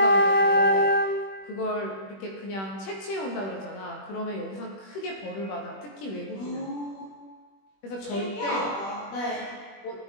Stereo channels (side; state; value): right; late; 21 ms